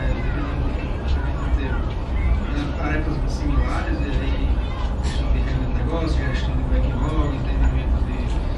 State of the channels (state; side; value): identical; both; correlation 1.00